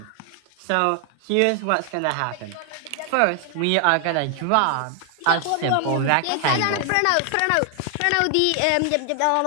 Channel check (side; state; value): both; different; correlation 0.00